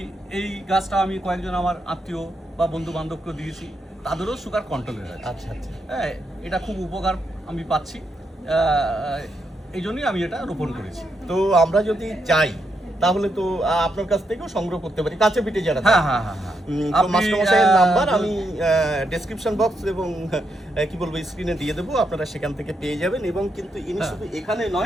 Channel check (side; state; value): both; normal; correlation 0.81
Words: এই গাছটা আমি কয়েকজন আমার আত্মীয় বা বন্ধু বান্ধবকে দিয়েছি, তাদেরও সুগার কন্ট্রোলে আছে। আচ্ছা আচ্ছা, হ্যাঁ, এটা খুব উপকার আমি পাচ্ছি, এই জন্যই আমি এটা রোপণ করেছি। তো আমরা যদি চাই তাহলে তো আপনার কাছ থেকেও সংগ্রহ করতে পারি, কাছে পিঠে যারা। হ্যাঁ হ্যাঁ হ্যাঁ হ্যাঁ, তো মাস্টারমশাইয়ের নাম্বার আমি ডেসক্রিপশন বক্স এবং কি বলবো স্ক্রিনে দিয়ে দেবো, আপনারা সেখান থেকে পেয়ে যাবেন। এবং কিন্তু ইনি শুধু এখানে